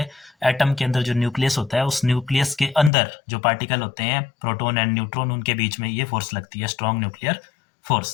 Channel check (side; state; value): right; drops out; at 2.9 s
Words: एटम के अंदर जो न्यूक्लियस होता है उस न्यूक्लियस के अंदर जो पार्टिकल होते हैं प्रोटॉन एंड न्यूट्रॉन, उनके बीच में ये फोर्स लगती है, स्ट्रॉन्ग न्यूक्लियर